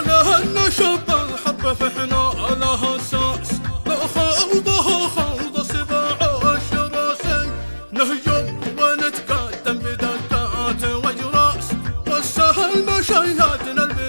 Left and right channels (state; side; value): inverted; both; correlation -1.00